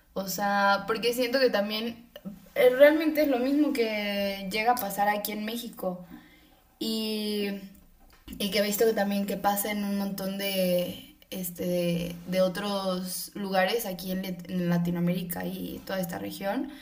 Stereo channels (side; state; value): both; identical; correlation 1.00